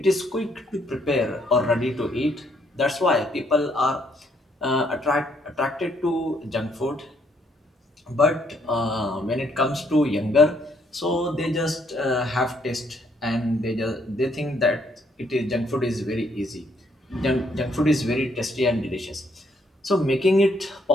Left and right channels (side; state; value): both; normal; correlation 0.70